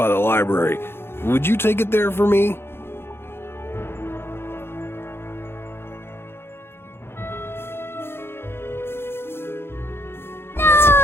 the library. Would you take it there for me?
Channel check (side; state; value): right; late; 0.11 ms